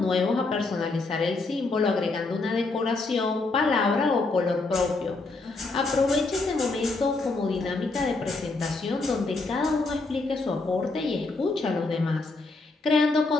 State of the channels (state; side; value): quieter; right; 3.5 dB